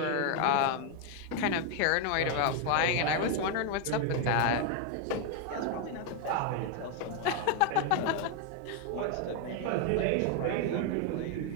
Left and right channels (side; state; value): both; different; correlation 0.01